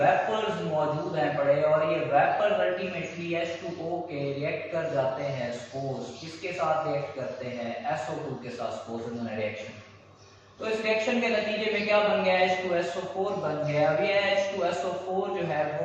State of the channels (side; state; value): both; identical; correlation 1.00